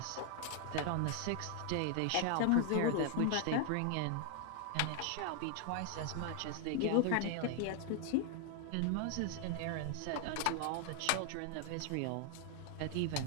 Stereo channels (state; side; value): different; both; correlation 0.00